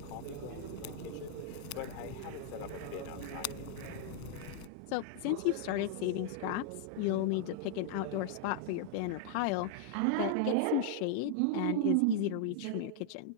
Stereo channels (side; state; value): both; different; correlation -0.01